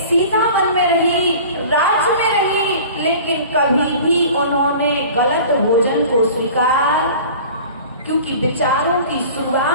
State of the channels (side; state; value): both; inverted; correlation -0.42